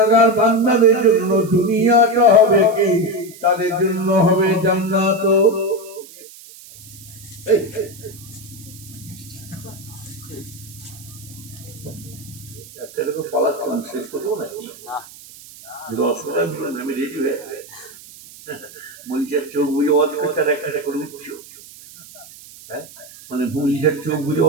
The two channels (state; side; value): noise; right; hiss, 19 dB below the sound